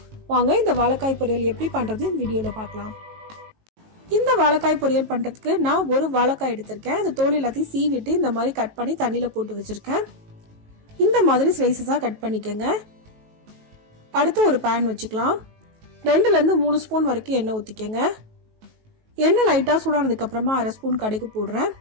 வாங்க இந்த வாழைக்காய் பொரியல் எப்படி பண்றது இந்த வீடியோல பார்க்கலாம். இந்த வாழைக்காய் பொரியல் பண்றதுக்கு நான் ஒரு வாழைக்காய் எடுத்திருக்கேன். அந்த தோல் எல்லாத்தையும் சீவிட்டு இந்த மாதிரி கட் பண்ணி தண்ணியில போட்டு வச்சிருக்கேன். இந்த மாதிரி ஸ்லைசஸா கட் பண்ணிக்கங்க. அடுத்து ஒரு pan வச்சுக்கலாம். 2 ல இருந்து 3 ஸ்பூன் வரைக்கும் எண்ணெய் ஊத்திக்கங்க. எண்ணெய் லைட்டா சூடானதுக்கு அப்புறமா 1/2 ஸ்பூன் கடுகு போடுறேன்.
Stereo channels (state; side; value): late; left; 19 ms